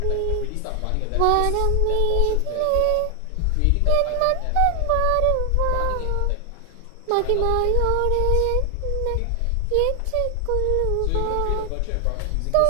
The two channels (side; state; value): both; different; correlation 0.00